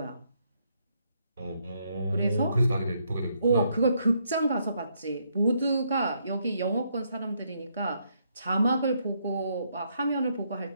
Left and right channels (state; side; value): inverted; both; correlation -0.74